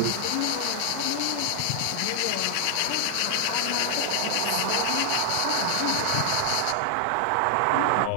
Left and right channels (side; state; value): both; different; correlation -0.01